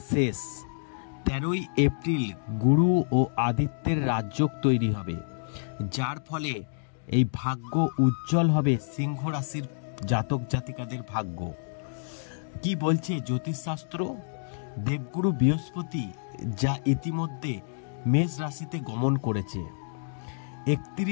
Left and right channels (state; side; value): silent; right; digital silence